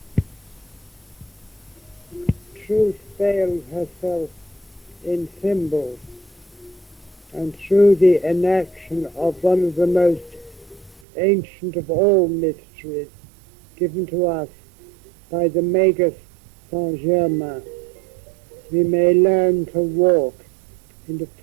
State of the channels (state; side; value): drops out; left; at 11.0 s